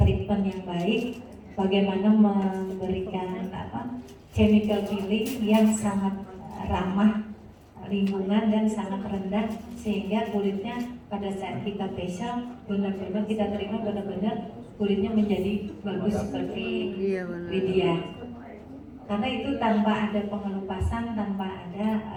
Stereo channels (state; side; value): identical; both; correlation 1.00